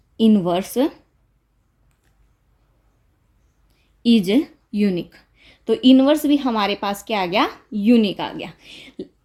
inverse is unique. तो इनवर्स भी हमारे पास क्या आ गया, यूनिक आ गया।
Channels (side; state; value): both; identical; correlation 1.00